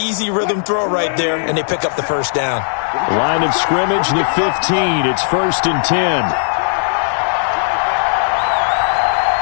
rhythm throw right there, and they pick up the first down. Line of scrimmage, the 15. It's 1st and 10.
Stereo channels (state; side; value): silent; right; digital silence